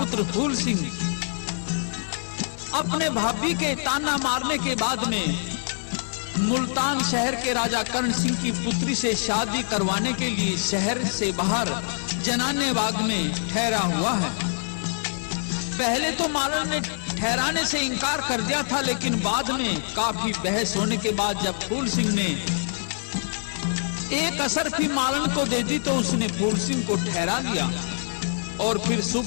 फूल सिंह अपने भाभी के ताना मारने के बाद में मुल्तान शहर के राजा कर्ण सिंह की पुत्री से शादी करवाने के लिए शहर से बाहर जनाने बाग में ठहरा हुआ है। पहले तो मालन ने ठहराने से इनकार कर दिया था, लेकिन बाद में काफी बहस होने के बाद जब फूल सिंह ने एक असरफी मालन को दे दी तो उसने फूल सिंह को ठहरा लिया। और फिर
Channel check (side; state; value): right; silent; 62 dB below the other